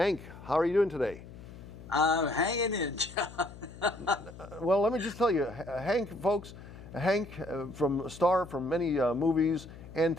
how are you doing today? I'm hanging in, John. Well, let me just tell you, Hank, folks, Hank from a star from many movies and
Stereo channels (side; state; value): left; noise; hum, 16 dB below the sound